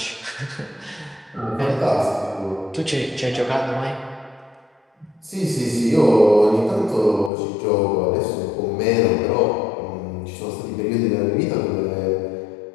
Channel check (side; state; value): right; drops out; at 7.3 s